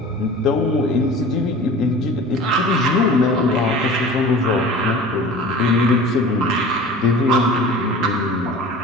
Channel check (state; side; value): normal; both; correlation 0.40